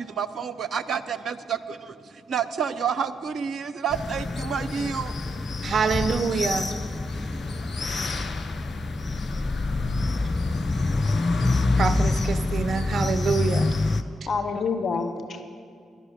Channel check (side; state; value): both; normal; correlation 0.83